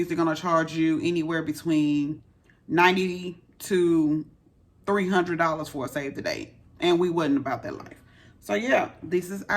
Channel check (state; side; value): identical; both; correlation 1.00